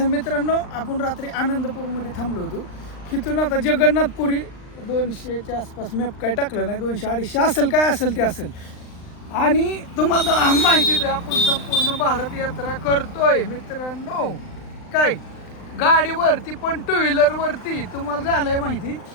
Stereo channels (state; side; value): late; right; 39 ms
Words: मित्रांनो, आपण रात्री आनंदपूरमध्ये थांबलो होतो. तिथून आता जगन्नाथपुरी 200च्या आसपास मॅप काय टाकलं नाही, 200-250 असेल, काय असेल ते असेल. आणि तुम्हाला माहितीच आहे, आपण संपूर्ण भारत यात्रा करतोय मित्रांनो. काय गाडीवरती पण टू व्हीलरवरती. तुम्हाला झालंय माहिती,